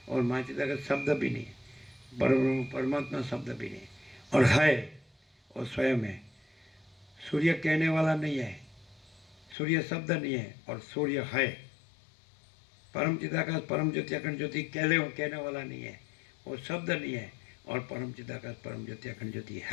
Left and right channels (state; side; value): drops out; right; at 9.6 s